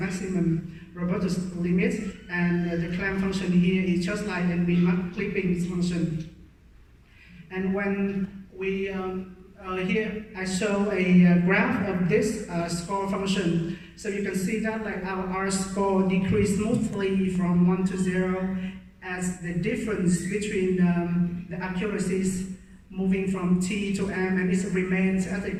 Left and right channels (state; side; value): identical; both; correlation 1.00